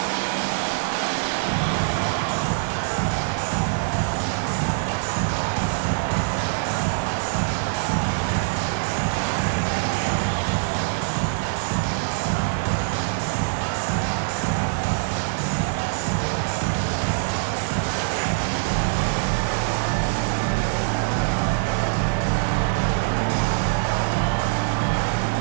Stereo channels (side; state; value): left; silent; digital silence